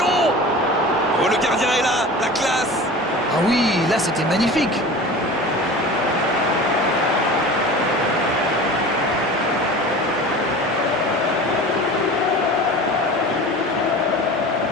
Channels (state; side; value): normal; both; correlation 0.36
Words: Oh, le gardien est là, la classe. Ah oui, là c'était magnifique.